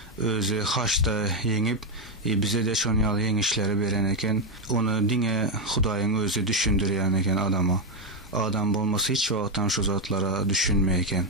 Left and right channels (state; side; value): normal; both; correlation 0.04